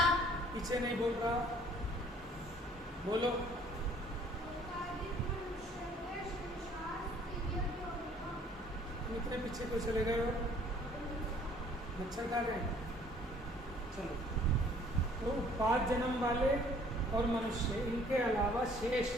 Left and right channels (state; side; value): normal; both; correlation 0.57